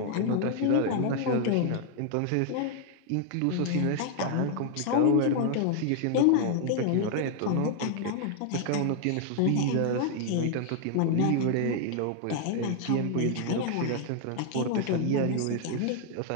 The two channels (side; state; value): both; different; correlation 0.00